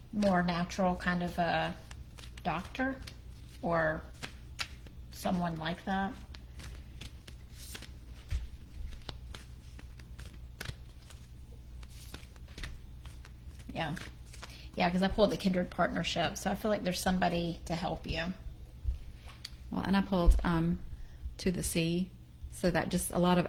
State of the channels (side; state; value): both; identical; correlation 1.00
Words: more natural kind of a doctor or someone like that. Yeah. Yeah, because I pulled the kindred partnership, so I feel like there's somebody to help you. Well, and I pulled to the sea, so that just a lot of